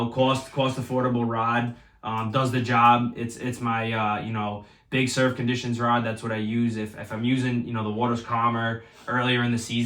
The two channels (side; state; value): both; identical; correlation 1.00